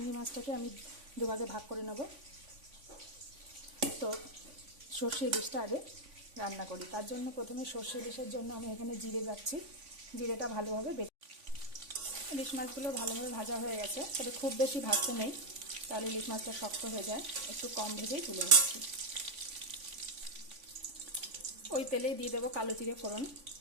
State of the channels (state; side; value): late; left; 3.5 ms